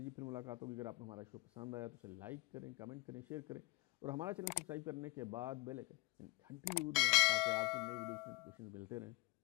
پھر ملاقات ہوگی۔ اگر آپ کو ہمارا شو پسند آیا تو اسے لائک کریں، کمنٹ کریں، شیئر کریں، اور ہمارا چینل سبسکرائب کرنے کے بعد بیل آئکن گھنٹی ضرور دبائیں تاکہ آپ کو نئی ویڈیوز کے نوٹیفیکیشنز ملتے رہیں۔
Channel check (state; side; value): quieter; right; 24.6 dB